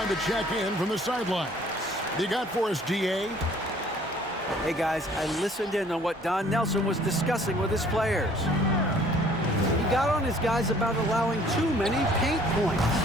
to check in from the sidelines. You got for us, GA? Hey guys, I listened in on what Don Nelson was discussing with his players. He got on his guys about allowing too many paint points.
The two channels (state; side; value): normal; both; correlation 0.56